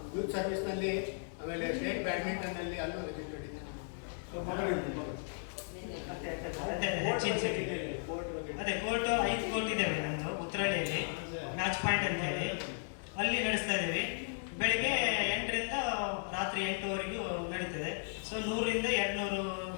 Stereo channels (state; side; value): silent; right; digital silence